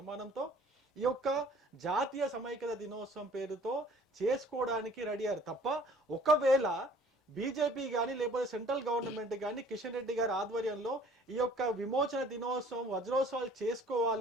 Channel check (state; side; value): normal; both; correlation 0.53